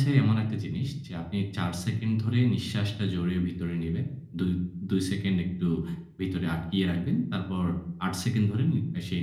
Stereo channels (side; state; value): both; identical; correlation 1.00